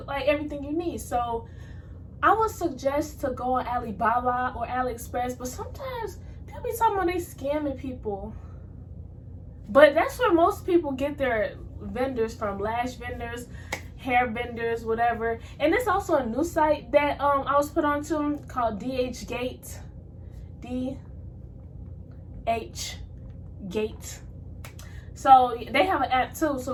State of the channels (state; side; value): identical; both; correlation 1.00